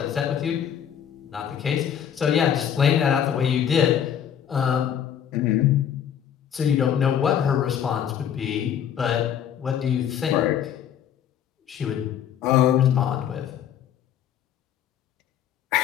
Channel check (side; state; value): right; quieter; 9.1 dB